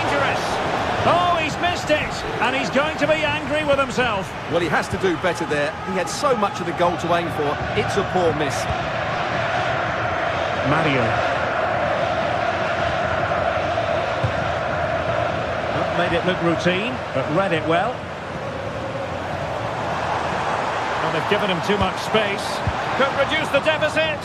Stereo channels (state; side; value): identical; both; correlation 1.00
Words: Oh, he's missed it. And he's going to be angry with himself. Well, he has to do better there. He had so much of the goal to aim for. It's a poor miss. Mario. Not made it look routine, but read it well. Well, they've given him too much space. Could reduce the